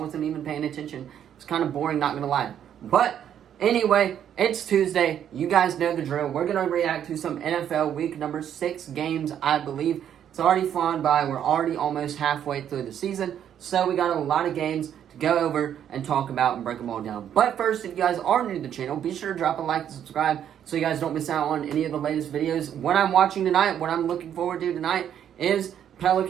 even paying attention. It's kind of boring, not going to lie. But anyway, it's Tuesday. You guys know the drill. We're going to react to some NFL Week number 6 games, I believe. It's already flown by. We're already almost halfway through the season. So we got a lot of games to go over and talk about and break them all down. But first, if you guys are new to the channel, be sure to drop a like and subscribe so you guys don't miss out on any of the latest videos. What I'm watching tonight, what I'm looking forward to tonight is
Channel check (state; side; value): quieter; left; 9.6 dB